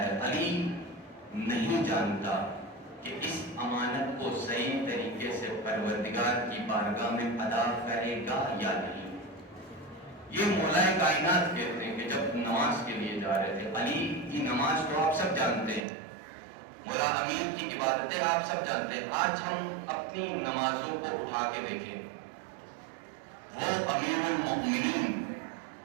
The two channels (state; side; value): drops out; left; at 15.9 s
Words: علی نہیں جانتا کہ اس امانت کو صحیح طریقے سے پروردگار کی بارگاہ میں ادا کرے گا یا نہیں. یہ مولا کائنات کہتے ہیں کہ جب نماز کے لیے جا رہے تھے. علی کی نماز تو آپ سب جانتے ہیں, مولا امیر کی عبادتیں آپ سب جانتے ہیں. آج ہم اپنی نمازوں کو اٹھا کے دیکھیں. وہ امیر المؤمنین